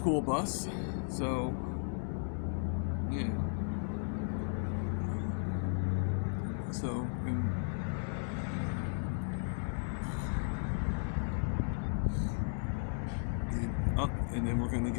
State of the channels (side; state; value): right; silent; digital silence